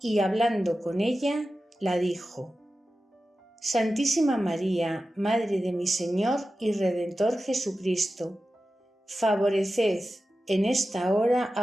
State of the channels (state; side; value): normal; both; correlation 0.93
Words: hablando con ella, la dijo: Santísima María, Madre de mi Señor y Redentor Jesucristo, favoreced en esta hora